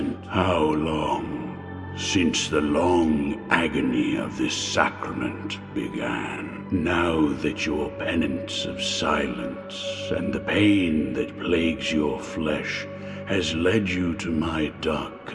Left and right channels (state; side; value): identical; both; correlation 1.00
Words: How long since the long agony of this sacrament began? Now that your penance of silence and the pain that plagues your flesh has led you to my dark